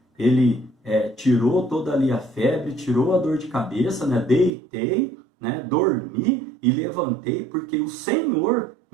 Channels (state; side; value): drops out; left; at 4.5 s